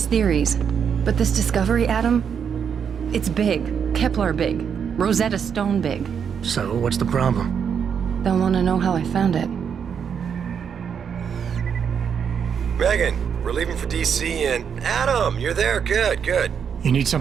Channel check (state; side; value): quieter; left; 7.3 dB